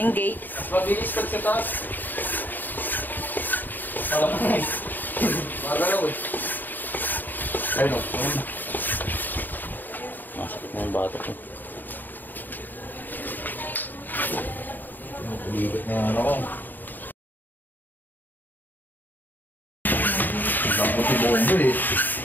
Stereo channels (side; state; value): right; late; 0.089 ms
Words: gate. Mabilis pag sa taas. Magalaw eh. Ayun o. Masakit na yung batok ko. Uliwit na yung ano ko. Ang puti bomba eh.